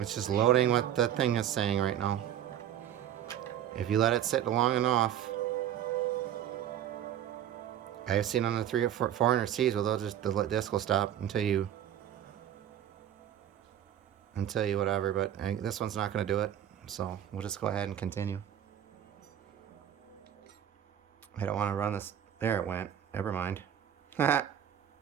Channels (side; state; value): left; quieter; 10.6 dB